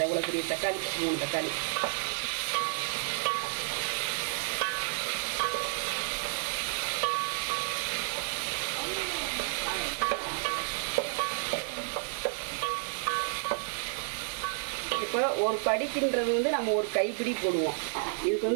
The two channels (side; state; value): left; silent; 57 dB below the other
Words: எவ்வளோ பெரிய தக்காளி, 3 தக்காளி. இப்போ ஒரு படிக்கின்றது நம்ம ஒரு கைப்பிடி போடுவோம்.